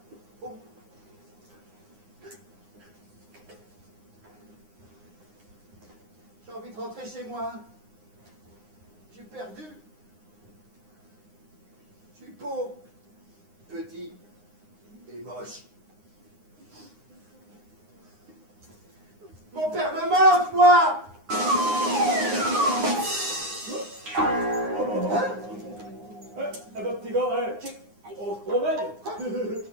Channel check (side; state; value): left; late; 9.7 ms